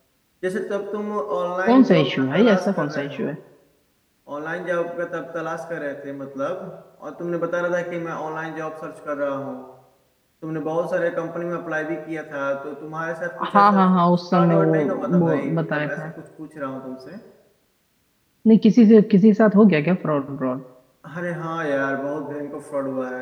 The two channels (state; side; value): identical; both; correlation 1.00